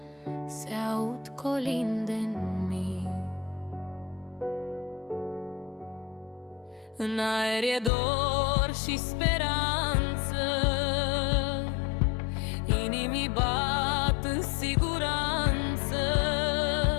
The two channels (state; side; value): drops out; right; at 7.9 s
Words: se aud colinde în mii. În aer e dor și speranță, inimii bat în siguranță.